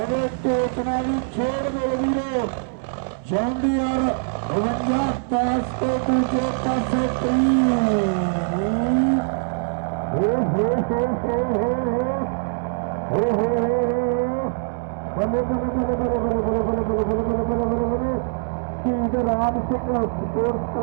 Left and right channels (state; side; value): silent; left; 64 dB below the other